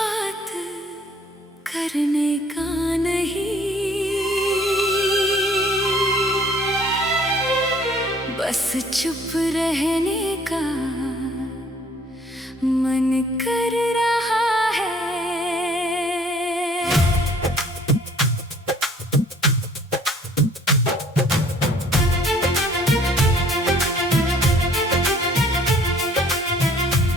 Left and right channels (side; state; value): both; normal; correlation 0.57